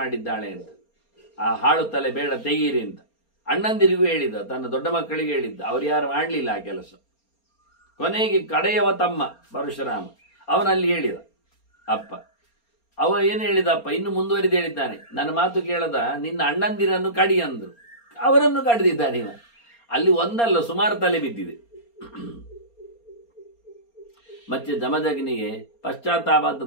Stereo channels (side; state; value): right; late; 4.3 ms